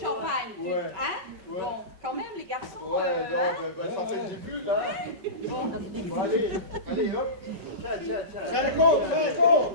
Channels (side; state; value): left; late; 5.3 ms